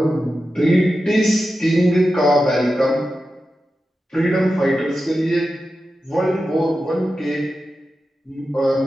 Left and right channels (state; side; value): normal; both; correlation 0.91